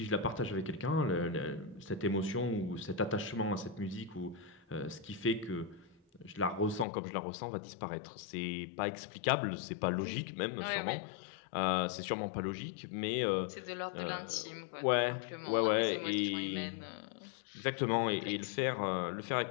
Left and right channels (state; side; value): drops out; right; at 6.9 s